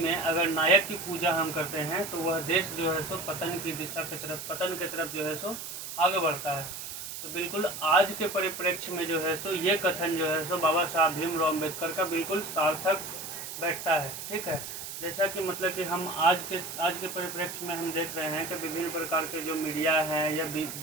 अगर नायक की पूजा हम करते हैं तो वह देश जो है सो पतन की दिशा की तरफ, पतन की तरफ जो है सो आगे बढ़ता है। तो बिल्कुल आज के परिप्रेक्ष्य में जो है सो ये कथन जो है सो बाबा साहब भीमराव अम्बेडकर का बिल्कुल सार्थक बैठता है, ठीक है। जैसा कि मतलब कि हम आज के परिप्रेक्ष्य में हम देख रहे हैं कि विभिन्न प्रकार के जो मीडिया है या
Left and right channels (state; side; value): noise; right; hiss, 8 dB below the sound